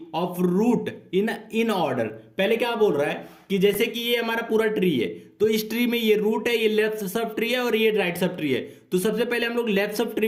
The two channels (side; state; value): both; identical; correlation 1.00